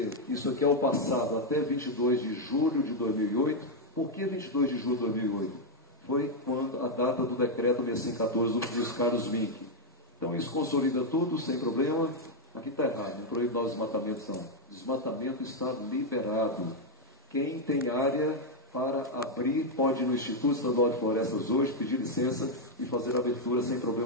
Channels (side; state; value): both; normal; correlation 0.00